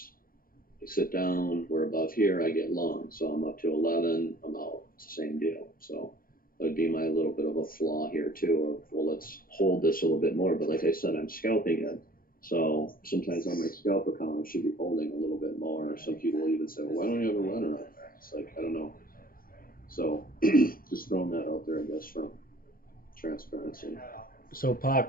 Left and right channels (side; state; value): right; late; 0.42 ms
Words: We sit down, we're above here, I get long. So I'm up to 11, I'm out. It's the same deal. So that would be my little bit of a flaw here too of, well, let's hold this a little bit more. But like I said, I'm scalping it. So sometimes on my scalp account, I should be holding a little bit more. Some people even say, well, why don't you have a runner on there? It's like, I don't know. So just throwing that out there, I guess, from transparency. So Pac,